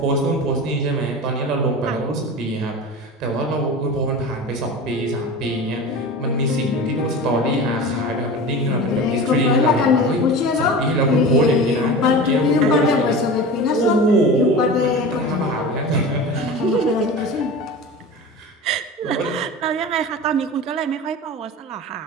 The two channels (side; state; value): both; normal; correlation 0.32